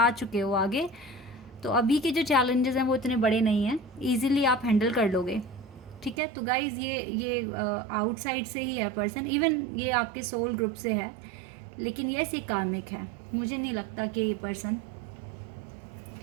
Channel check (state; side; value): drops out; left; at 6.2 s